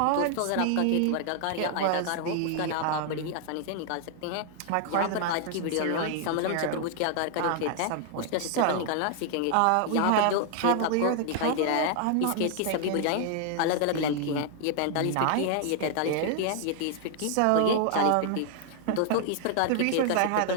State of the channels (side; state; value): both; different; correlation 0.00